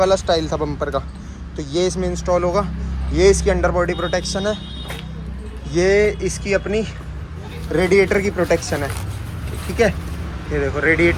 स्टाइल था बम्पर का, तो ये इसमें इंस्टॉल होगा। ये इसकी अंडर बॉडी प्रोटेक्शन है, ये इसकी अपनी रेडिएटर की प्रोटेक्शन है, ठीक है। ये देखो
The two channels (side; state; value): both; identical; correlation 1.00